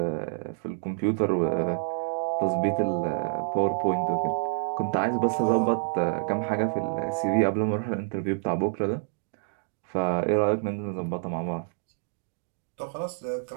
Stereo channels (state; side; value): silent; left; digital silence